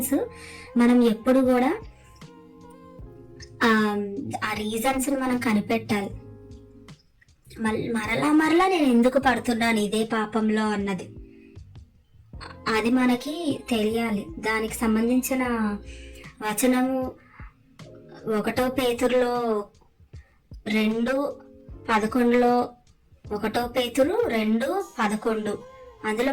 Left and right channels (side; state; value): both; identical; correlation 1.00